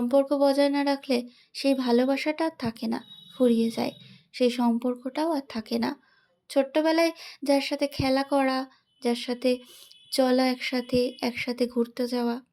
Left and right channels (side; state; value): both; identical; correlation 1.00